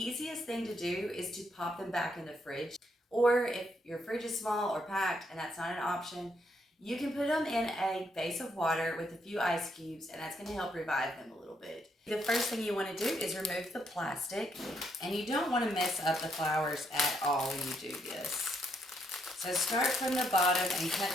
thing to do is to pop them back in the fridge. Or if your fridge is small or packed and that's not an option, you can put them in a vase of water with a few ice cubes, and that's going to help revive them a little bit. The first thing you want to do is remove the plastic, and you don't want to mess up the flowers at all when you do this. So start from the bottom and cut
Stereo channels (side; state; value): both; normal; correlation 0.75